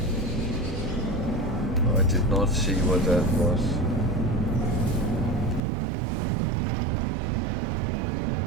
I did not see what that was.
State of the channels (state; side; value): drops out; left; at 5.6 s